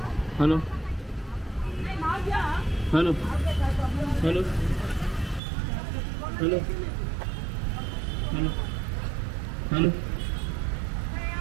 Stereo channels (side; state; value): left; drops out; at 5.4 s